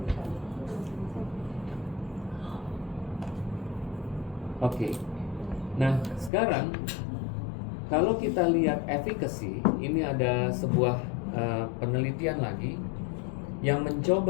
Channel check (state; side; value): drops out; right; at 6.3 s